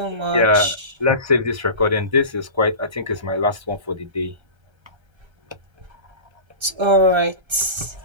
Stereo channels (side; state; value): left; late; 1.3 ms